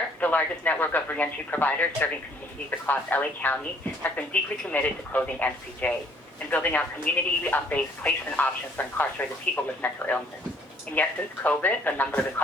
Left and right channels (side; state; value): both; normal; correlation 0.61